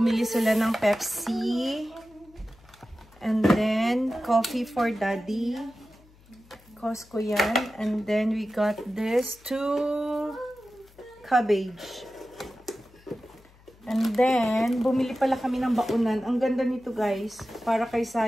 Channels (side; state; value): left; noise; hum, 27 dB below the sound